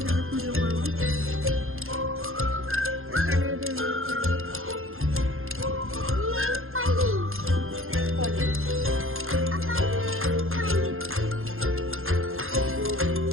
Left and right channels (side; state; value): left; late; 0.61 ms